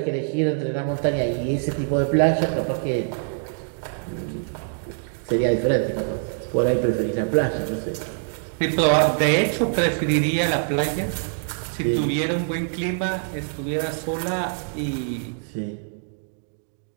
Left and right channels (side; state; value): left; silent; digital silence